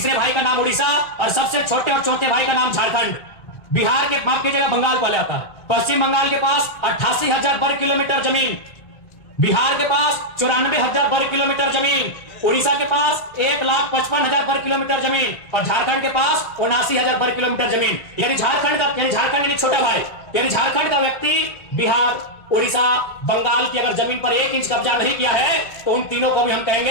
भाई का नाम उड़ीसा, और सबसे छोटे और चौथे भाई का नाम झारखंड। बिहार के माफ कीजिएगा, बंगाल पहले आता है। पश्चिम बंगाल के पास 88,000 वर्ग किलोमीटर जमीन, बिहार के पास 94,000 वर्ग किलोमीटर जमीन, उड़ीसा के पास 1,55,000 वर्ग किलोमीटर जमीन, और झारखंड के पास 79,000 वर्ग किलोमीटर जमीन। यानी झारखंड यानी छोटा भाई, यानी झारखंड का व्यक्ति बिहार, उड़ीसा, बंगाल की अगर जमीन पर 1 इंच कब्जा नहीं किया है तो उन तीनों को भी हम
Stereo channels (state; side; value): late; right; 1.3 ms